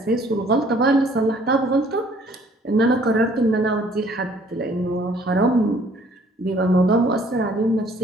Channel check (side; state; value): both; normal; correlation 0.59